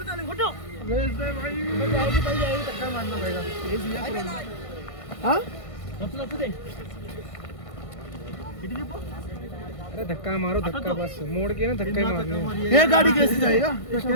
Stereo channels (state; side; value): late; right; 1.5 ms